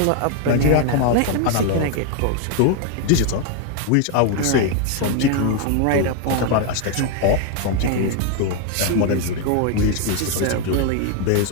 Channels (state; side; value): different; both; correlation 0.01